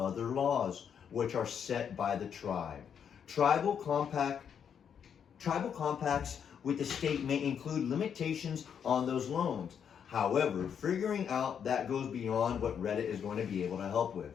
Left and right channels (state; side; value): quieter; right; 7.8 dB